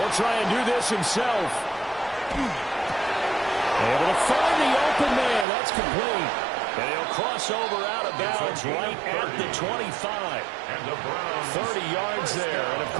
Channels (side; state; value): left; drops out; at 5.5 s